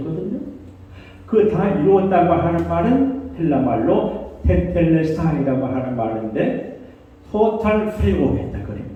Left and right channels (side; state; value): both; identical; correlation 1.00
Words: 그 다 이루었다고 하는 말은 헬라 말로 테텔레스타이라고 하는 말인데 토탈 프리오했다 그런